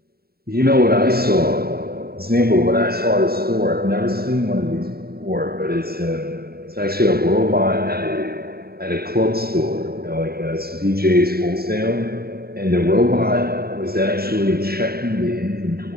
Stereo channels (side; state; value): left; late; 0.45 ms